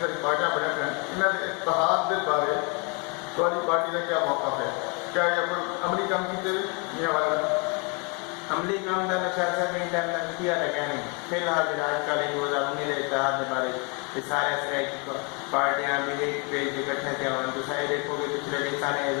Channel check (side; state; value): right; quieter; 33.2 dB